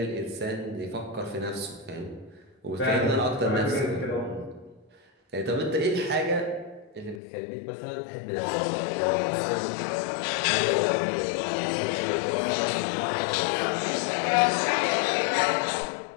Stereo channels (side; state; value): right; drops out; at 7.2 s